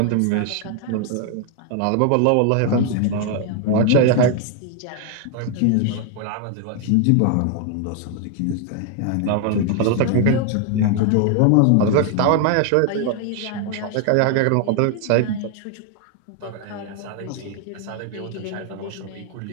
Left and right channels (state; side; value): different; both; correlation 0.00